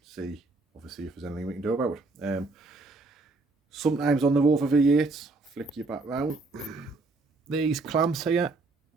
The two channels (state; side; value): quieter; left; 3.5 dB